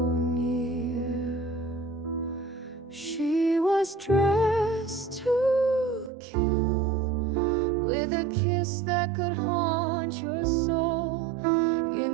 near. She was dressed to kill, with a kiss that could haunt your soul.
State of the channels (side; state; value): left; drops out; at 6.1 s